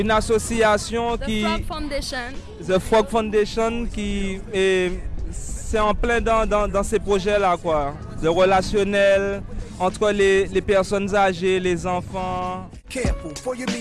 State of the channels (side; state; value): both; identical; correlation 1.00